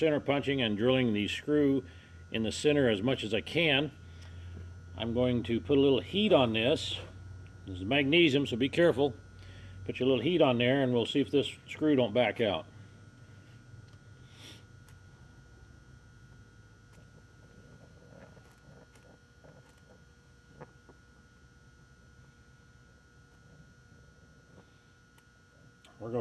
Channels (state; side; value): identical; both; correlation 1.00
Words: punching and drilling the screw in the center as much as I can, I'm going to put a little heat on this. This is magnesium, so be careful. Put your little heat on there and we'll see if this screw don't back out. We're